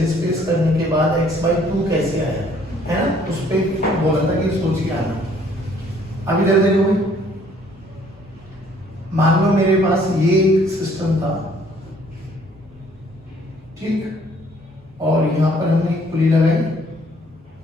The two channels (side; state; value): both; normal; correlation 0.61